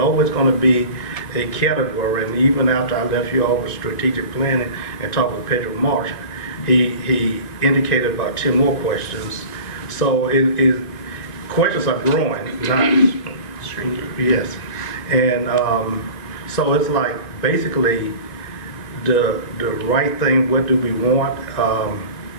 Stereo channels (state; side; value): late; right; 2.5 ms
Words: going to be a category. And even after I left you all with strategic planning and talked with Pedro Marsh, he indicated about 10 more questions. So questions are growing, not shrinking. Yes, and so it's like basically the right thing. What do we want?